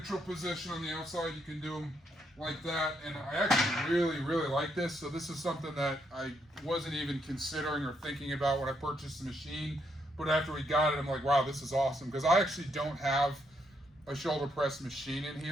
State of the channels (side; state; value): both; normal; correlation 0.76